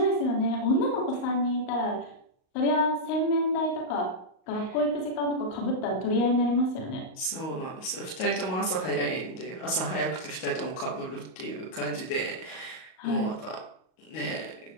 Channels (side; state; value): right; late; 38 ms